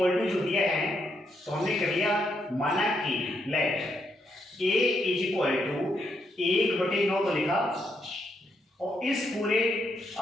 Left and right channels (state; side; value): normal; both; correlation 0.78